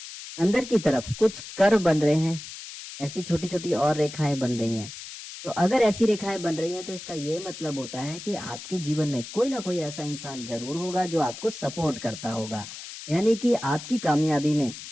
अंदर की तरफ कुछ कर्व बन रहे हैं, ऐसी छोटी छोटी और रेखाएं बन रही हैं, तो अगर ऐसी रेखाएं बन रही हैं तो इसका ये मतलब होता है कि आपके जीवन में कोई ना कोई ऐसा इंसान जरूर होगा जो आपको सपोर्ट करता होगा, यानी कि आपकी कामयाबी में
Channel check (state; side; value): noise; left; hiss, 12 dB below the sound